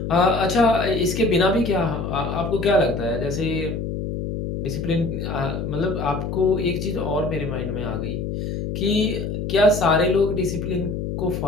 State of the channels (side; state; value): left; noise; hum, 4 dB below the sound